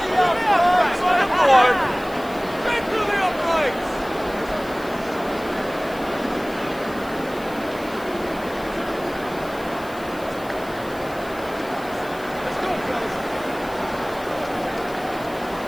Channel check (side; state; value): left; noise; hiss, 20 dB below the sound